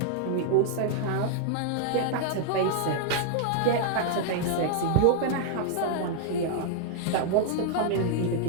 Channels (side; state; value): both; different; correlation -0.01